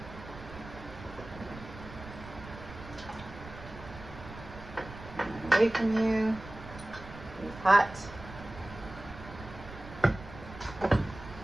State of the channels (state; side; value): noise; right; rumble, 14 dB below the sound